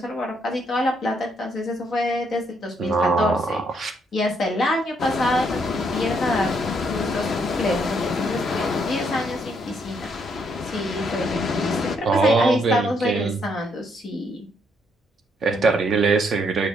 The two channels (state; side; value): normal; both; correlation 0.73